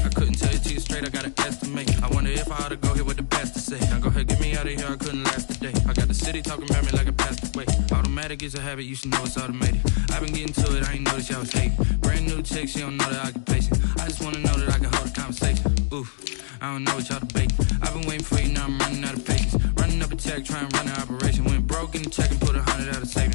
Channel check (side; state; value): right; silent; digital silence